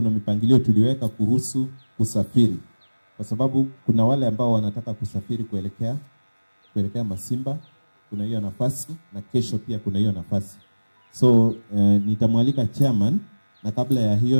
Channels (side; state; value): both; inverted; correlation -1.00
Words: mipangilio tuliweka kuhusu kusafiri, kwa sababu kuna wale ambao wanataka kusafiri kuelekea Masimba, kuna hiyo nafasi, na kesho pia kuna hiyo nafasi. So nitamwalika chairman, na kabla ya